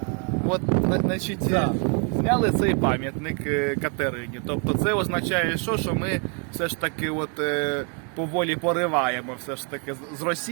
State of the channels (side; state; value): left; quieter; 38.5 dB